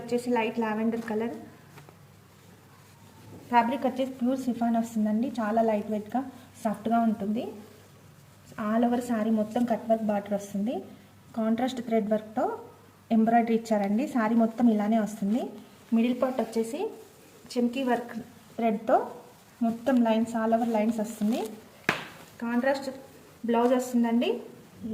లైట్ లావెండర్ కలర్, ఫ్యాబ్రిక్ వచ్చేసి ప్యూర్ సిఫాన్ వస్తుందండి. చాలా లైట్ వెయిట్గా సాఫ్ట్గా ఉంటుంది. ఆల్ ఓవర్ సారీ మొత్తం కట్ వర్క్ బార్డర్ వస్తుంది. కాంట్రాస్ట్ థ్రెడ్ వర్క్తో ఎంబ్రాయిడరీ ఇచ్చారండి. సారీ మొత్తం ఇలానే వస్తుంది. మిడిల్ పార్ట్ వచ్చేసి చెమ్కీ వర్క్ థ్రెడ్తో మొత్తం లైన్స్ ఆల్ ఓవర్ లైన్స్ వస్తుంది. కాంట్రాస్ట్ బ్లౌజ్ వస్తుందండి.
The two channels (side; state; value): both; identical; correlation 1.00